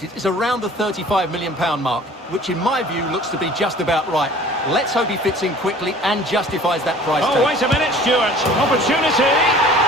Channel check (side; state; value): both; normal; correlation 0.48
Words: is around the £35 million mark, which in my view looks to be just about right. Let's hope he fits in quickly and justifies that price tag. Oh, wait a minute, Stuart. Opportunity.